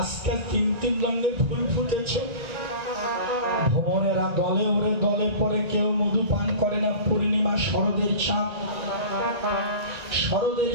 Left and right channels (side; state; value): left; late; 1.9 ms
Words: তিন তিন রঙের ফুল ফুটেছে। ভ্রমণেরা দলে ওরে দলে পরে, কেউ মধু পান করে না। পূর্ণিমা শরদের চাঁদ, শরদের